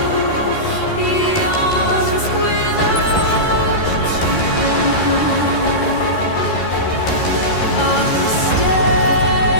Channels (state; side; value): late; right; 13 ms